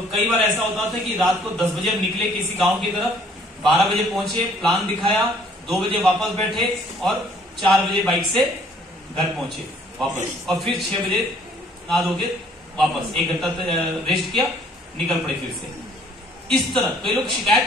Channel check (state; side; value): normal; both; correlation 0.59